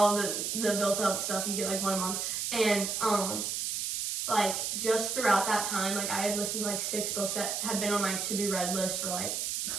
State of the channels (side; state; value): right; noise; hiss, 1 dB below the sound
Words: the built up stuff, you get, like, 1 a month. And, like, just throughout that time, like, I had listened to, like, 6 books that had been on my to-be-read list for, like,